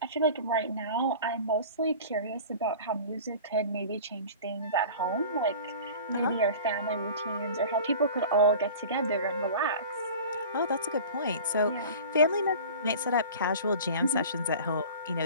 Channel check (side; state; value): both; inverted; correlation -0.39